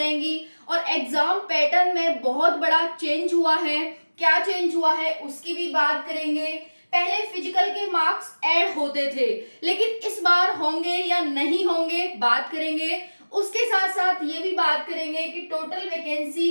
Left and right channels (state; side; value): inverted; both; correlation -1.00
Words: और एग्जाम पैटर्न में बहुत बड़ा चेंज हुआ है। क्या चेंज हुआ है उसकी भी बात करेंगे। पहले फिजिकल के मार्क्स ऐड होते थे, लेकिन इस बार होंगे या नहीं होंगे बात करेंगे। उसके साथ साथ ये भी बात करेंगे कि टोटल